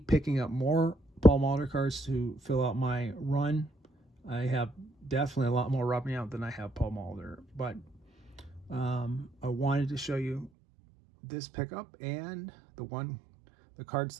picking up more Paul Molitor cards to fill out my run. I have definitely a lot more rubbing out than I have Paul Molitor, but I wanted to show you this pickup and the cards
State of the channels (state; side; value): drops out; left; at 10.5 s